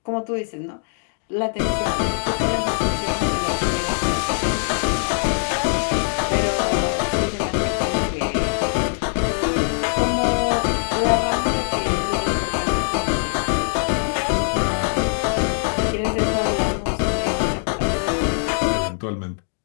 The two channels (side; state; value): right; silent; digital silence